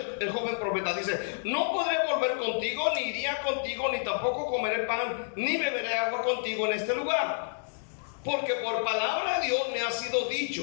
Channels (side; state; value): right; silent; digital silence